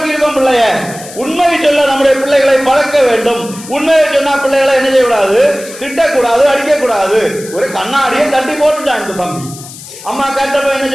இருக்கோம் பிள்ளைய. உண்மையை சொல்ல நம்முடைய பிள்ளைகளை பழக்க வேண்டும். உண்மையை சொன்னா பிள்ளைகளை என்ன செய்யக்கூடாது? திட்டக்கூடாது, அடிக்கக்கூடாது. ஒரு கண்ணாடியை தட்டி போட்டுட்டான் இந்த தம்பி. அம்மா கேட்டப்ப என்ன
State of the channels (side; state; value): left; noise; hiss, 15 dB below the sound